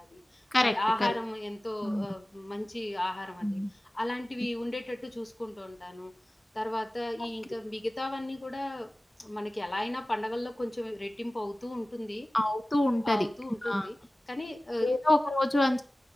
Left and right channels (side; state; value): both; normal; correlation 0.97